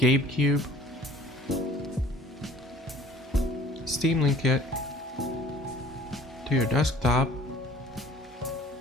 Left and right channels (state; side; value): normal; both; correlation 0.51